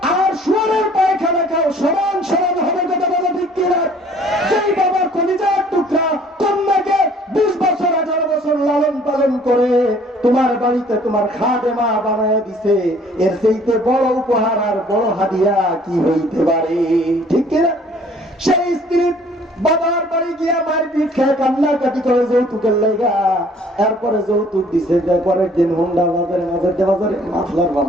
আর শুয়ারের পায়খানা খাও, সমান সমান হবে, কথা বলে ঠিক কিনা? যেই বাবার কলিজার টুকরা কন্যাকে 20 বছর 18 বছর লালন পালন করে তোমার বাড়িতে তোমার খাদেমা বানায় দিছে, এর চাইতে বড় উপহার আর বড় হাদিয়া কি হইতে পারে? ঠিক কিনা? সেই স্ত্রী বাবার বাড়ি গিয়া মারপিট খেয়ে কান্নাকাটি করে যৌতুকের লেগা, এরপরে যৌতুক দিছে, পরের দিন হুন্ডা বাজারে মাফলার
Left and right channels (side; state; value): both; normal; correlation 0.56